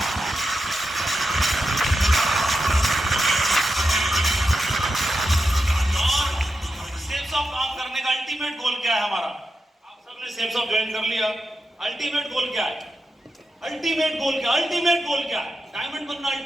अल्टीमेट गोल क्या है हमारा? आप सबने सेफ्स ऑफ ज्वाइन कर लिया। अल्टीमेट गोल क्या है? अल्टीमेट गोल क्या? अल्टीमेट गोल क्या है? डायमंड बनना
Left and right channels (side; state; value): both; normal; correlation 0.88